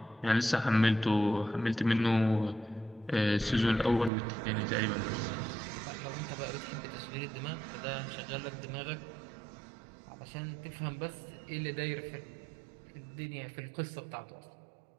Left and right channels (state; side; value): drops out; left; at 4.1 s